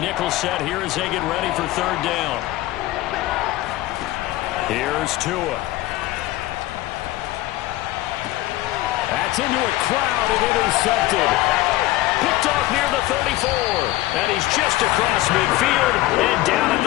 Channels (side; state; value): right; quieter; 17.0 dB